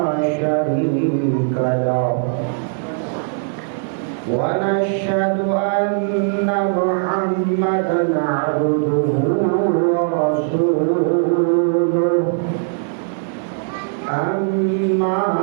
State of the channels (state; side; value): silent; left; digital silence